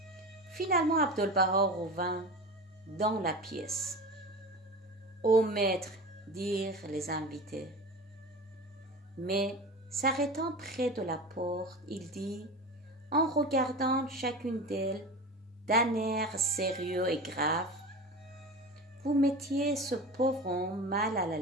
Finalement, Abdu'l-Baha revint dans la pièce. « Ô maître » dirent les invités. Mais, s'arrêtant près de la porte, il dit, en regardant chacune d'elles d'un air sérieux et grave: « Vous mettiez ce pauvre homme mal à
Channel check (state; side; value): normal; both; correlation 0.31